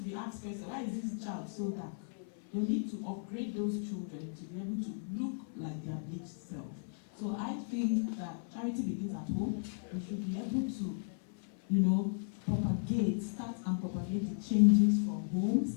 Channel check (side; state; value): right; silent; 54 dB below the other